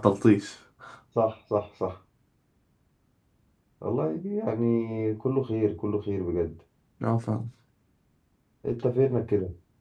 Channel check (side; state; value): both; identical; correlation 1.00